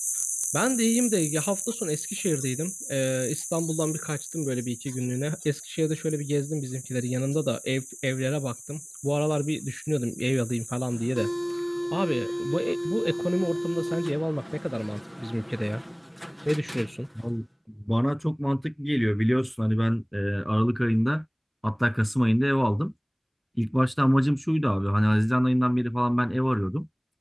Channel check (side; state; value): both; identical; correlation 1.00